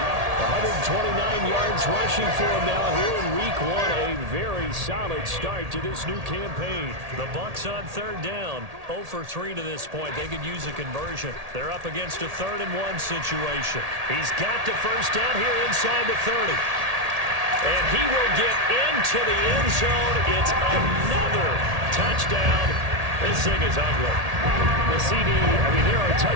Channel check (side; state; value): left; late; 1.8 ms